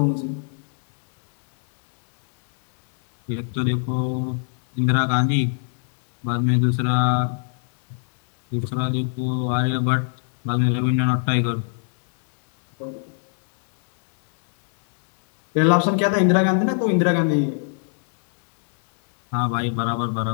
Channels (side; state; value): right; silent; 65 dB below the other